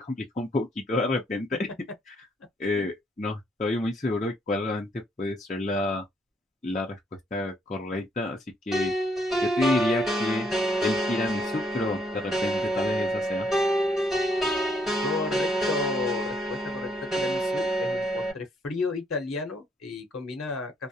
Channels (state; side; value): normal; both; correlation 0.70